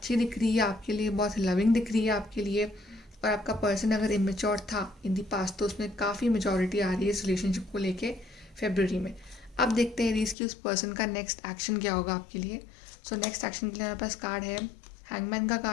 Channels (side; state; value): right; drops out; at 10.4 s